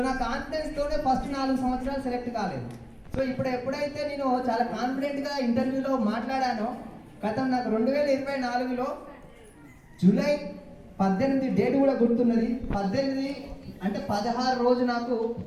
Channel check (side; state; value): both; identical; correlation 1.00